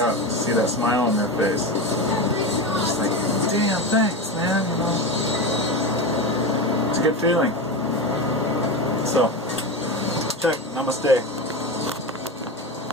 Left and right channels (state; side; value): normal; both; correlation 0.20